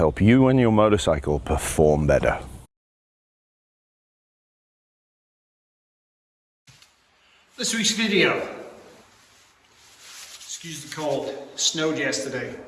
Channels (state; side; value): identical; both; correlation 1.00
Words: you and your motorcycle perform better. This week's video, excuse the cold, snowed yesterday.